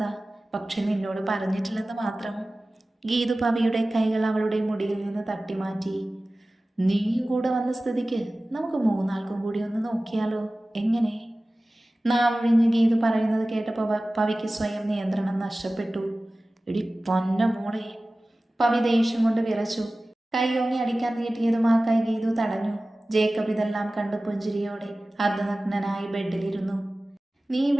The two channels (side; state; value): both; normal; correlation 0.97